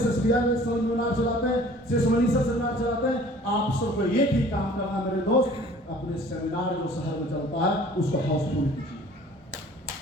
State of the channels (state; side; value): normal; both; correlation 0.50